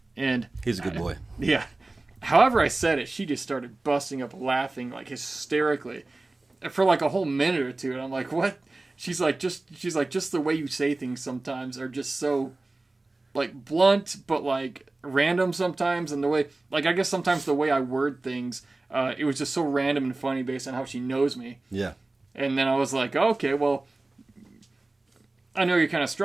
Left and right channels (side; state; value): left; quieter; 3.1 dB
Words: And he's a good boy. Yeah. However I said it, she just started busting up laughing, like, hysterically for like a whole minute or two. And I'm like, what? She's like, just the way you say things sometimes are just so, like, blunt, but, like, random sometimes. And the way, like, I guess sometimes the way I word things, it was just so random and funny based on how she knows me. Yeah. And then I was like, okay, well, I know you're kind of